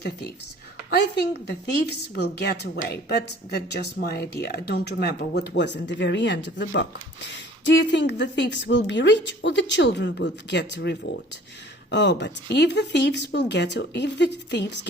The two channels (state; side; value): normal; both; correlation 0.50